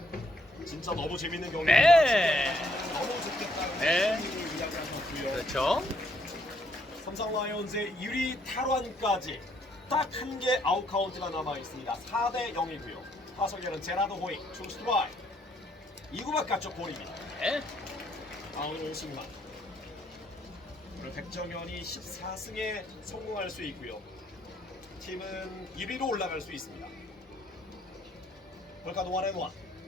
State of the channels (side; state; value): both; normal; correlation 0.69